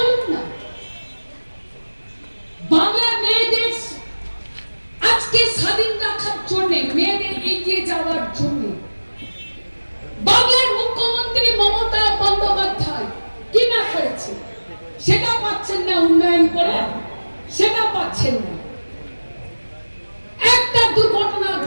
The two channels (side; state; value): both; inverted; correlation -1.00